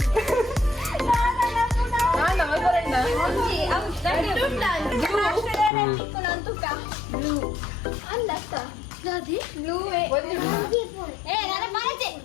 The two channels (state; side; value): drops out; right; at 5.7 s